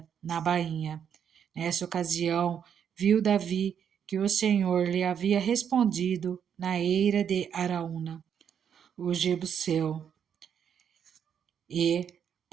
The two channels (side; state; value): left; quieter; 8.2 dB